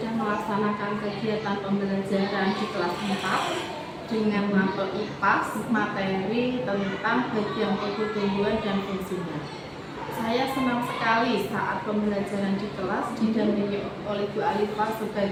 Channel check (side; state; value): both; identical; correlation 1.00